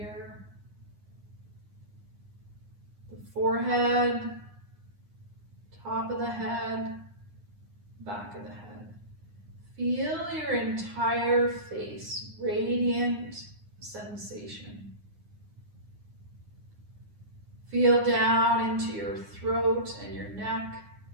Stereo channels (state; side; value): late; left; 9.8 ms